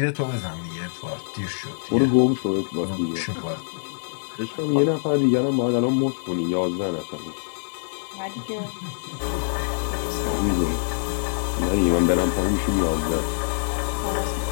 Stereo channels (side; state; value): right; silent; digital silence